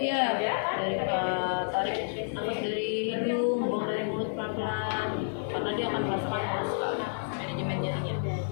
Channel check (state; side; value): silent; right; digital silence